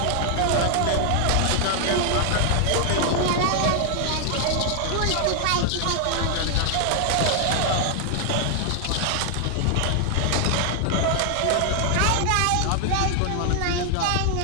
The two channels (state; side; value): different; both; correlation 0.00